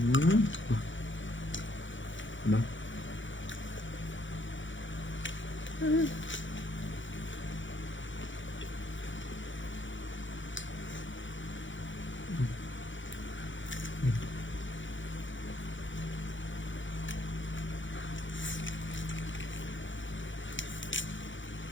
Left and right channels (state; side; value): late; right; 0.55 ms